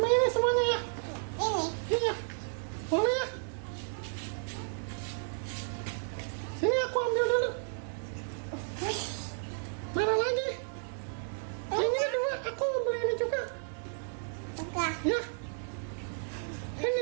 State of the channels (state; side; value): silent; left; digital silence